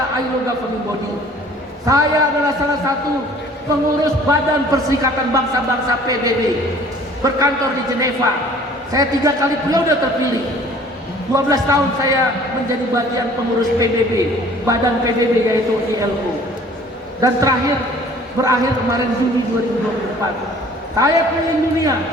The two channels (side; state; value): both; normal; correlation 0.52